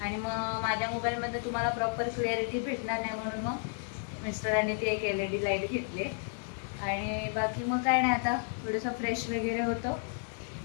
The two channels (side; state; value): right; silent; 56 dB below the other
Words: आणि मग माझ्या मोबाईलमध्ये तुम्हाला प्रॉपर क्लिअरिटी भेटणार नाही, म्हणून मग मिस्टरांनी ती एक LED लाईट घेतली आणि बाकी मग काय नाही, आता थोडंसं फ्रेश वगैरे होतो